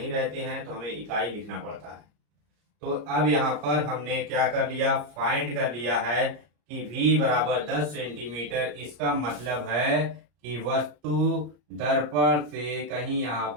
रहते हैं तो हमें इकाई लिखना पड़ता है। तो अब यहाँ पर हमने क्या कर लिया, फाइंड कर लिया है कि v बराबर 10 सेंटीमीटर। इसका मतलब है कि वस्तु दर्पण से कहीं यहाँ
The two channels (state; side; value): late; left; 34 ms